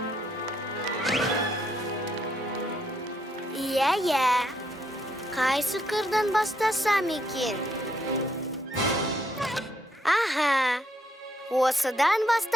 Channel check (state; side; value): normal; both; correlation 0.74